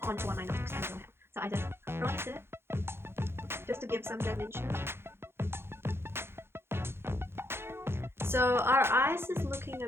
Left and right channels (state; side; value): late; left; 0.12 ms